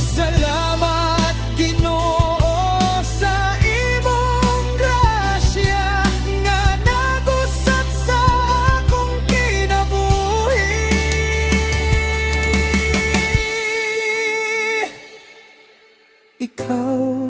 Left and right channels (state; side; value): identical; both; correlation 1.00